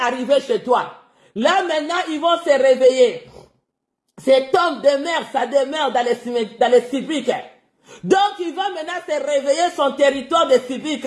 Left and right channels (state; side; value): identical; both; correlation 1.00